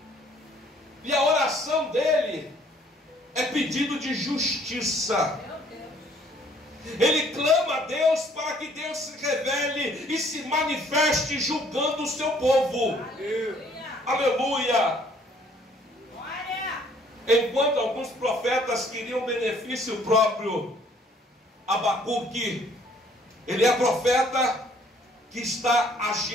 E a oração dele é pedido de justiça. Ele clama a Deus para que Deus se revele e se manifeste julgando o seu povo. Aleluia. Enquanto alguns profetas queriam benefício próprio, Abacuque, ele é profeta que está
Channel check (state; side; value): normal; both; correlation 0.60